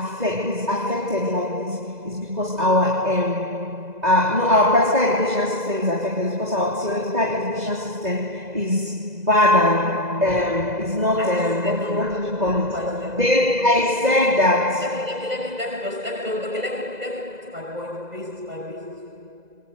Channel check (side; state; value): left; late; 2.0 ms